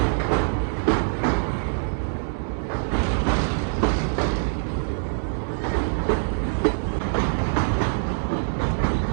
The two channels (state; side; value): silent; left; digital silence